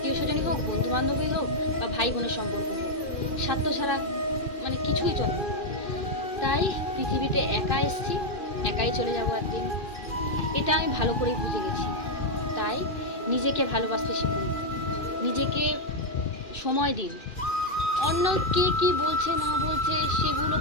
স্বজনই হোক, বন্ধু বান্ধবই হোক, বা ভাই বোনের সম্পর্ক হোক, স্বার্থ ছাড়া মানে কিছুই চলে না। তাই পৃথিবীতে একা এসছি, একাই চলে যাবো একদিন, এটা আমি ভালো করেই বুঝে গেছি। তাই নিজেকে ভালোবাসতে শিখুন, নিজেকে সময় দিন। অন্য কে কি বলছে না বলছে সেগুলো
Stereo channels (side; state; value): right; late; 2.4 ms